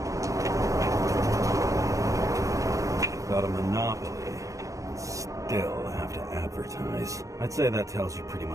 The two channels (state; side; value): late; left; 0.16 ms